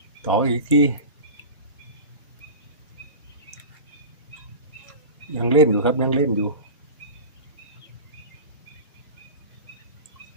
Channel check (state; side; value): inverted; both; correlation -0.31